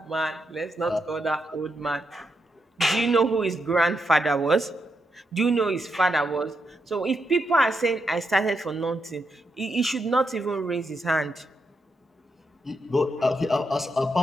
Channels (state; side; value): normal; both; correlation 0.82